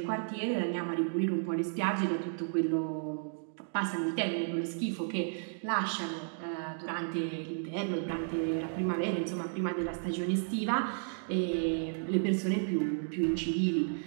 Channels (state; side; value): silent; left; digital silence